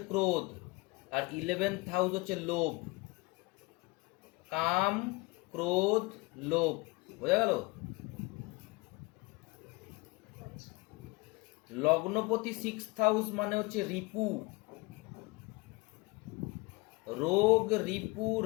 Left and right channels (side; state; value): right; quieter; 24.7 dB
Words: ক্রোধ, আর 11th হাউস হচ্ছে লোভ। কাম, ক্রোধ, লোভ, বোঝা গেল? লগ্নপতি সিক্সথ হাউস মানে হচ্ছে রিপু, রোগ, রিপু,